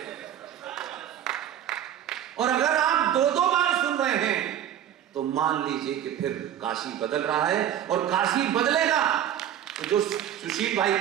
और अगर आप 2-2 बार सुन रहे हैं तो मान लीजिए कि फिर काशी बदल रहा है, और काशी बदलेगा तो जो सुशील भाई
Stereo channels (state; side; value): quieter; left; 10.6 dB